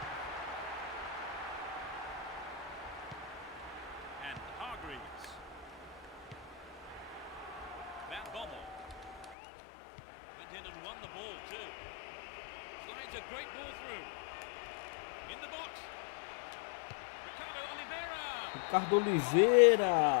And Hargreaves. Van Bommel. Went in and won the ball too. Slides a great ball through. In the box. Ricardo Oliveira. Ricardo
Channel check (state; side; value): drops out; right; at 9.3 s